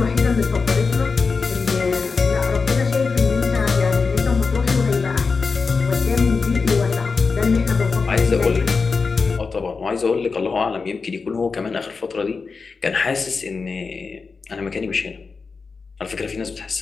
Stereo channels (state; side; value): quieter; right; 4.7 dB